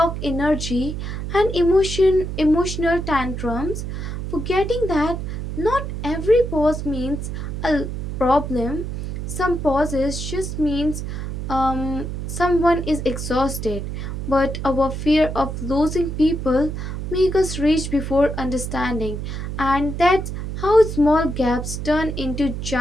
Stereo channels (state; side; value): noise; right; hum, 5 dB below the sound